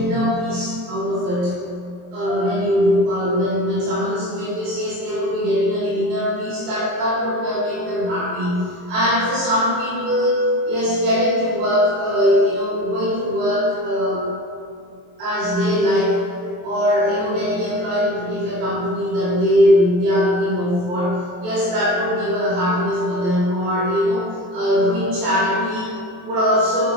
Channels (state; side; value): late; left; 23 ms